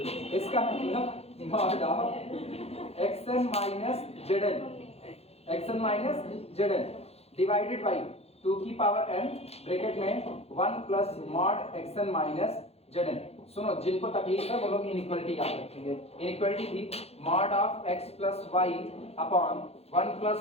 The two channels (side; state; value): right; late; 0.30 ms